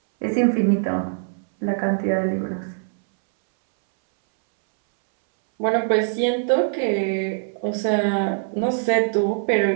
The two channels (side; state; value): left; silent; 64 dB below the other